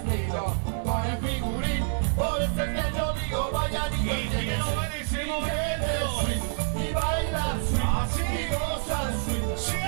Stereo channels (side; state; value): left; silent; digital silence